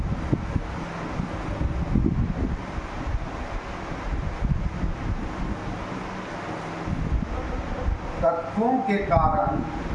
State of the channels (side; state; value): both; identical; correlation 1.00